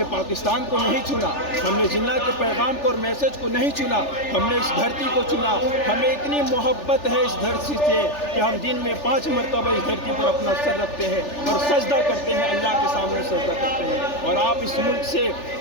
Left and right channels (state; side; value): late; right; 3.4 ms